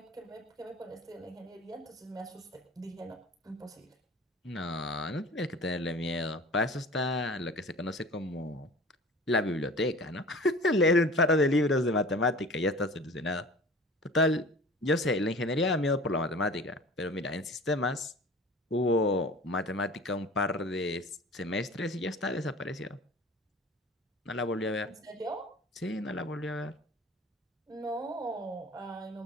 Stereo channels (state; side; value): normal; both; correlation 0.41